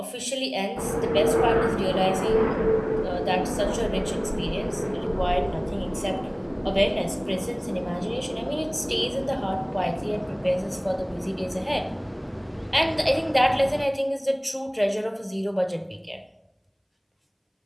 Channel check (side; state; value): both; identical; correlation 1.00